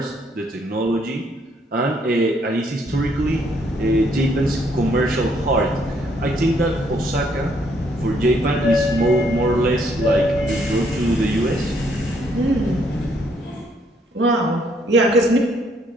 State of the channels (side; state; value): both; normal; correlation 0.69